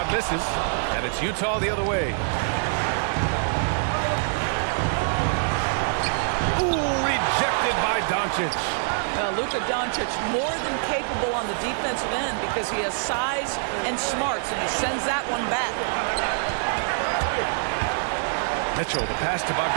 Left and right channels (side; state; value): left; silent; 62 dB below the other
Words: misses, and it's Utah the other way. Ooh, rejected by Doncic. Luka Doncic more than capable on the defensive end because he has size and smarts, and he sends that one back. Mitchell, the pass to